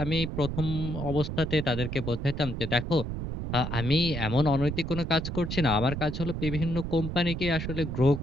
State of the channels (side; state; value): right; noise; rumble, 5 dB below the sound